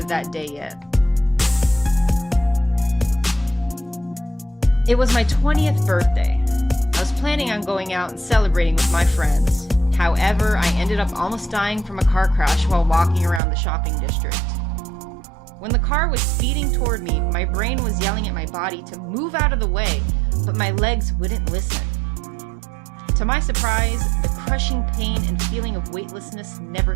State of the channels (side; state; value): left; drops out; at 13.4 s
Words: that day yet. It was my 20th birthday. I was planning on going out and celebrating with my friends. However, I ended up almost dying from a car crash while walking around the shopping district. When the car was speeding toward me, my brain was yelling at my body to move out of the way, but my legs wouldn't listen. To my surprise, the crushing pain and feeling of weightlessness never